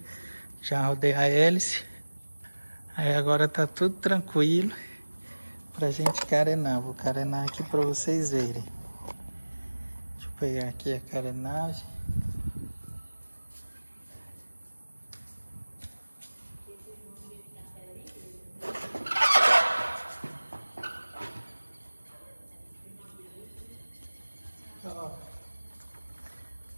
Já rodei a hélice. Aí agora tá tudo tranquilo pra gente carenar. Vou carenar aqui pra vocês verem. Deixa eu pegar aqui a carenagem. Ó,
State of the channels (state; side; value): inverted; both; correlation -1.00